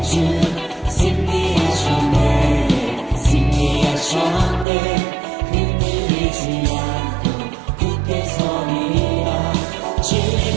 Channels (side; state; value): left; drops out; at 4.7 s